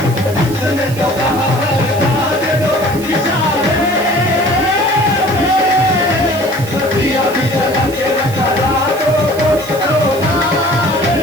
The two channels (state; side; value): noise; right; hiss, 15 dB below the sound